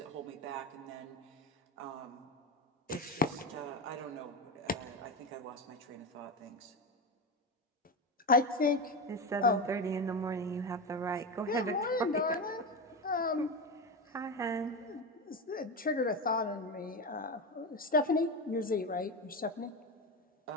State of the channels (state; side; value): normal; both; correlation 0.18